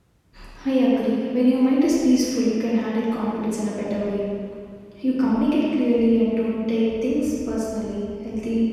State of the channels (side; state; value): both; identical; correlation 1.00